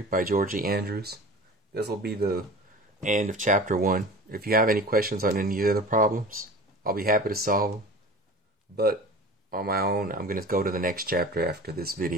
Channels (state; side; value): normal; both; correlation 0.38